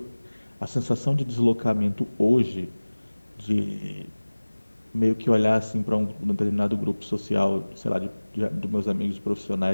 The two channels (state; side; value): inverted; both; correlation -1.00